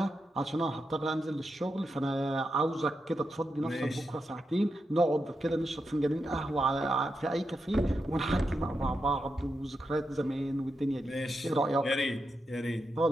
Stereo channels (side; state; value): both; normal; correlation 0.86